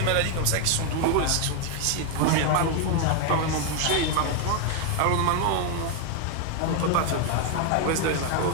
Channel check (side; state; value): both; different; correlation 0.01